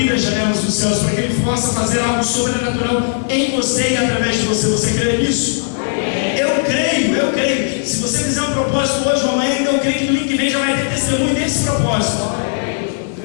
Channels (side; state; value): right; silent; 68 dB below the other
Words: as janelas dos céus, para que Ele possa fazer algo sobrenatural em você e através de você. Você crê nisso? Eu creio. Se você fizer um propósito hoje ou amanhã, eu creio que domingo que vem já vai ter testemunho desse propósito.